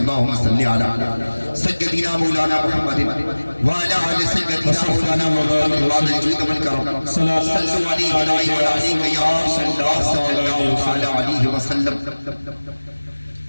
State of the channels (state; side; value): inverted; both; correlation -1.00